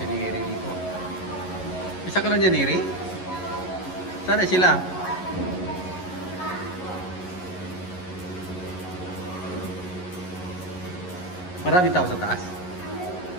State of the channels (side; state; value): right; late; 11 ms